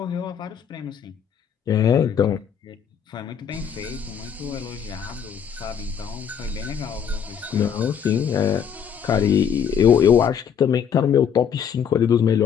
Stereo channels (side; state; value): right; quieter; 7.9 dB